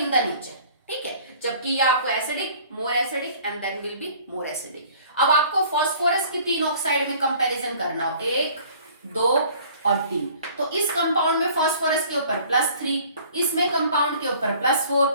the nature, ठीक है, जबकि ये आपको acidic, more acidic and then will be more acidic. अब आपको फास्फोरस की 3 ऑक्साइड में कंपैरिजन करना हो, 1, 2 और 3। तो इस कंपाउंड में फास्फोरस के ऊपर +3, इसमें कंपाउंड के ऊपर +4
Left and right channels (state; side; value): inverted; both; correlation -0.51